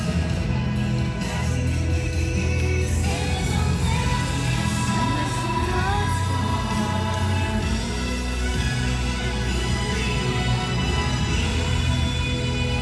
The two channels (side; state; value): both; identical; correlation 1.00